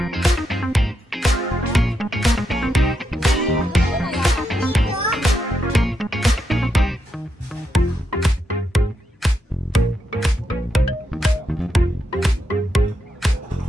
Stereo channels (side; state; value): both; normal; correlation 0.83